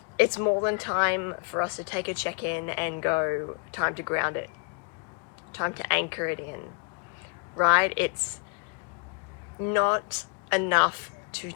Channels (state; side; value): quieter; right; 36.3 dB